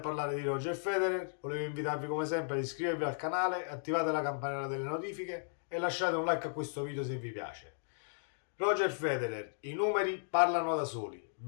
di Roger Federer, volevo invitarvi come sempre ad iscrivervi al canale, attivate la campanella delle notifiche e lasciate un like a questo video se vi piace. Roger Federer, i numeri parlano da soli:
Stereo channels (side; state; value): right; silent; digital silence